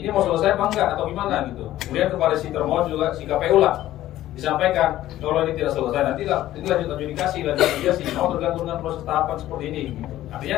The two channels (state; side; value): quieter; right; 14.1 dB